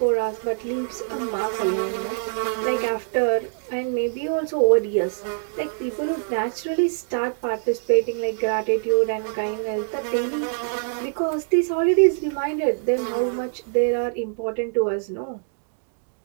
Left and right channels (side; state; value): left; silent; digital silence